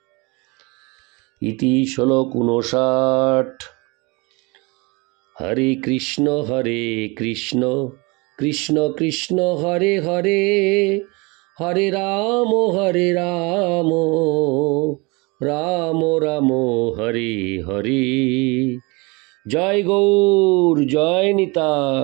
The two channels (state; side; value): quieter; left; 27.0 dB